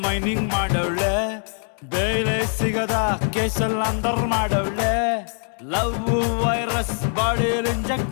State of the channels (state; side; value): silent; right; 59 dB below the other